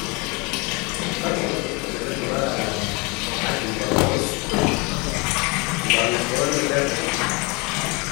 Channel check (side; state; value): right; quieter; 28.5 dB